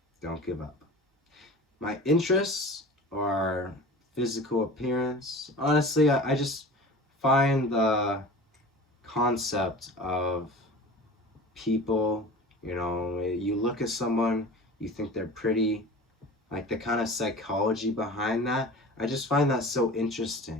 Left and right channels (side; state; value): both; normal; correlation 0.37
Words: don't give up. My interests are physical appearance. Honestly, I just find the concept of people, you look at someone, you think they're pretty, like the kind of psychology behind that. I just find that so